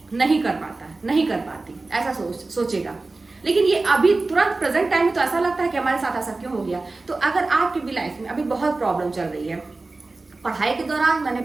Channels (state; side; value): quieter; left; 3.4 dB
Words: नहीं कर पाती, ऐसा सोचेगा। लेकिन ये अभी तुरंत प्रेजेंट टाइम में तो ऐसा लगता है कि हमारे साथ ऐसा क्यों हो गया। तो अगर आपकी भी लाइफ में अभी बहुत प्रॉब्लम चल रही है, पढ़ाई के दौरान मैंने